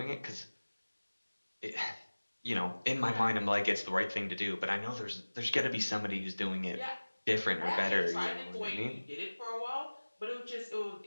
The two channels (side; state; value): both; inverted; correlation -1.00